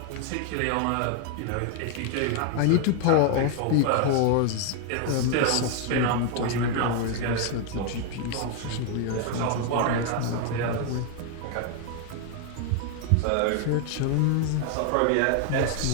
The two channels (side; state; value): both; different; correlation 0.00